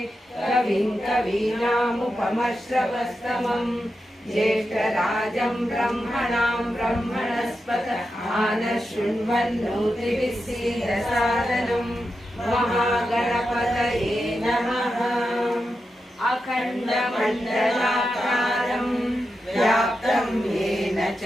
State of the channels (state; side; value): normal; both; correlation 0.89